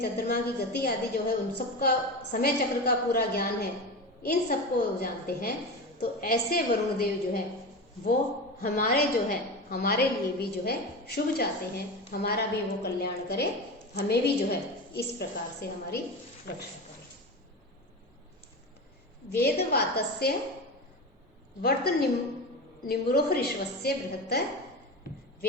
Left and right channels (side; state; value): both; normal; correlation 0.25